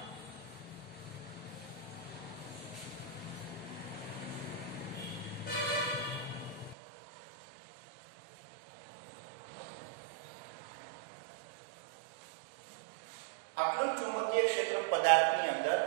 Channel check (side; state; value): left; drops out; at 6.8 s